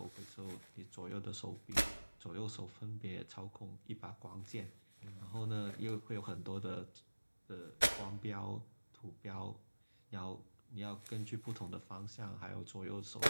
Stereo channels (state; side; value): inverted; both; correlation -1.00